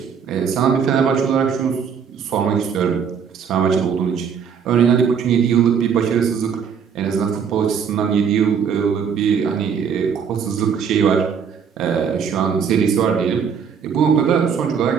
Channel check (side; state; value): left; quieter; 7.0 dB